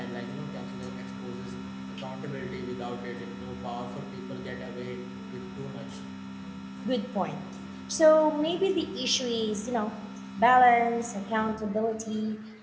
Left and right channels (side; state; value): both; identical; correlation 1.00